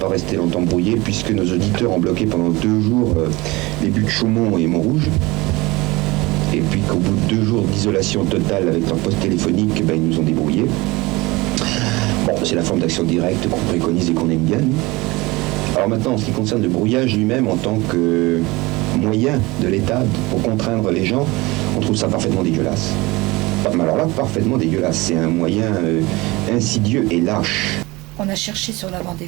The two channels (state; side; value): quieter; left; 22.3 dB